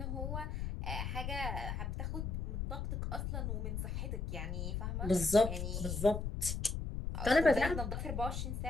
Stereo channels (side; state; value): left; noise; rumble, 3 dB below the sound